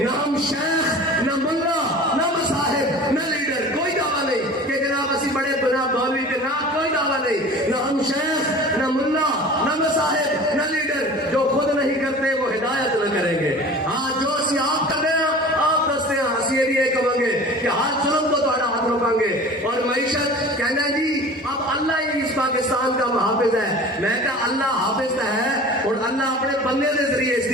نہ ہم شیخ, نہ ملا, نہ مصاحب, نہ لیڈر, کوئی دعویٰ نہیں کہ جناب اسی بڑے جناب مولوی کے نام, کوئی دعویٰ نہیں. نہ ہم شیخ, نہ ملا, نہ مصاحب, نہ لیڈر. جو خود نہیں کرتے وہ ہدایت نہ کریں گے. ہاں جو اسی آپ کر رہے ہیں آپ دستے ہیں, اسی یہ بھی یہ کہیں گے کہ ہر ظلم کو تھوڑا ہاتھ روکیں گے. اور معیشت کہنا جی اب اللہ ہی اس پاکستان کا محافظ ہے. میں کہا اللہ حافظ ہے اور اللہ اپنے بندے کے ذریعے اس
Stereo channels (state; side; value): normal; both; correlation 0.40